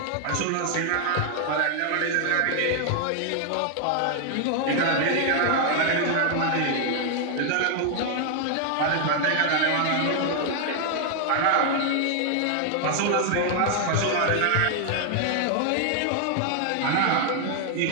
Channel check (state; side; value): different; both; correlation 0.00